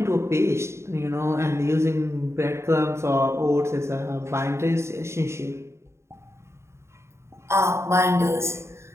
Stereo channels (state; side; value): late; left; 0.13 ms